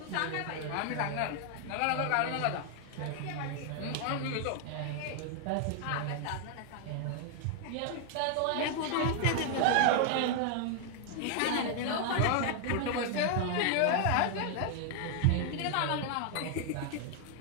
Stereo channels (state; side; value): different; both; correlation 0.00